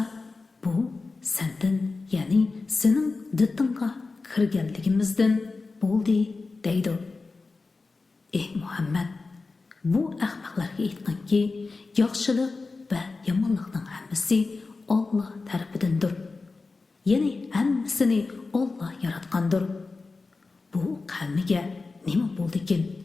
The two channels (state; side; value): quieter; right; 3.9 dB